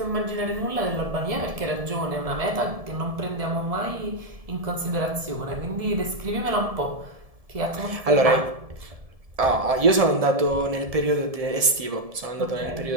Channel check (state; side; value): late; left; 1.7 ms